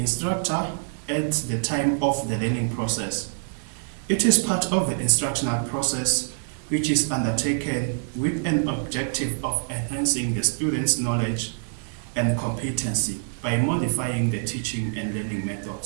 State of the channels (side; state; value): left; silent; 61 dB below the other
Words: at the time of the learning process. It is part of the instructional process which is undertaken with an objective of enhancing the student's knowledge and competency by modifying the teaching and learning